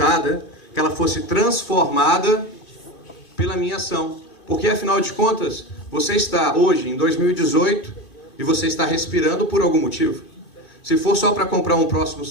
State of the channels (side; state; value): right; late; 2.5 ms